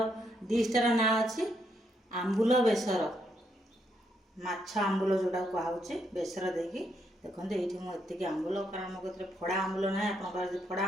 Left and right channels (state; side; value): normal; both; correlation 0.77